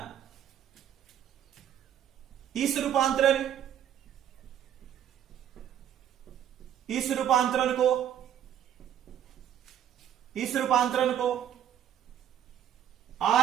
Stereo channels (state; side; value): quieter; left; 10.1 dB